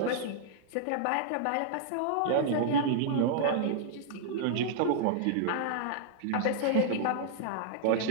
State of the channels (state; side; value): different; both; correlation -0.01